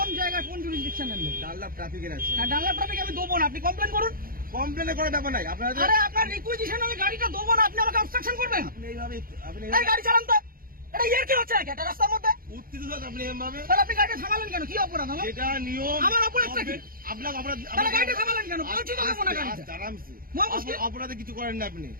জায়গায়, কোন জুরিসডিকশনের লোক? ডাল্লাভ ট্রাফিকের আছে। ডাল্লাভ ট্রাফিক আমি দেবো না, আপনি কমপ্লেন করুন। কমপ্লেনের করার ব্যাপার নাই। আপনারা আরে আপনার রিকুইজিশন আমি গাড়িটা দেবো না, আপনি আমাকে অবস্ট্রাকশন করবেন? আপনি এইভাবে এই গাড়ি চালান তো, এটা ইয়ার কি হচ্ছে একটা রাস্তার মধ্যে? উত্তেজিত আপনি এভাবে, তাহলে আপনি গাড়িটা থামালেন কেন? কি অপরাধ আমার? এটা নিয়ম। আমার অপরাধটা কি? আপনার অপরাধ। তাহলে গাড়িটা থামালেন কেন? বলছি তো দেবো না গাড়িটা। আরামসে মহামুশকিল। অপরাধে কিছু করেন না আপনি।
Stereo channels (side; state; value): left; late; 0.42 ms